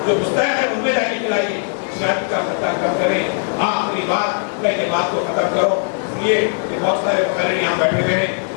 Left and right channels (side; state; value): right; silent; 61 dB below the other